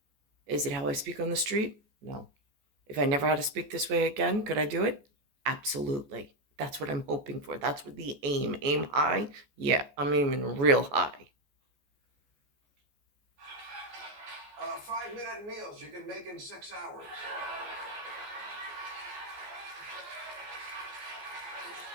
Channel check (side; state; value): left; late; 14 ms